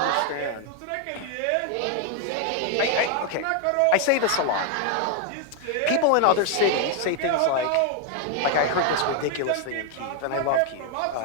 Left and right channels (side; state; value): both; different; correlation 0.00